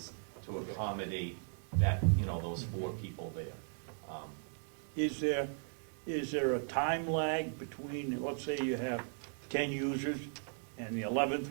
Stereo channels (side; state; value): left; silent; 53 dB below the other